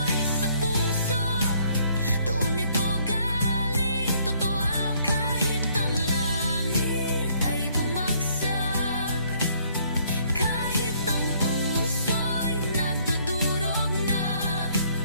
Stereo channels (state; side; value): inverted; both; correlation -0.65